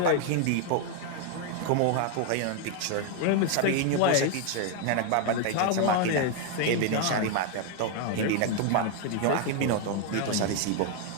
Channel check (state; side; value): different; both; correlation 0.01